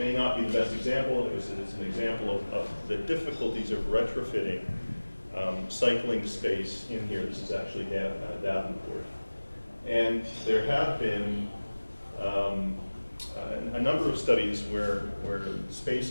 not be the best example, it's an example of the difficulties of retrofitting cycling space in here. This is actually Davenport. And there have been a number of studies where space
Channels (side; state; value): both; inverted; correlation -1.00